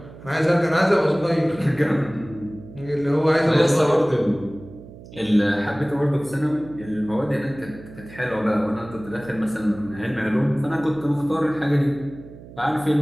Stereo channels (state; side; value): noise; right; hum, 18 dB below the sound